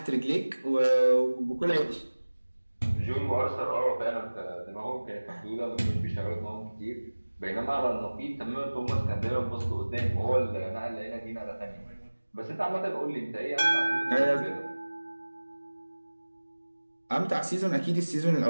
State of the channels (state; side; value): inverted; both; correlation -1.00